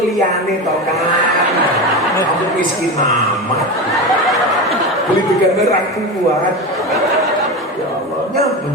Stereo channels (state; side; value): normal; both; correlation 0.22